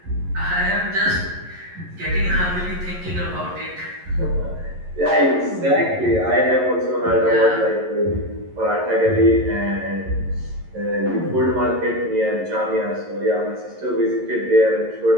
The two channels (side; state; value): left; late; 11 ms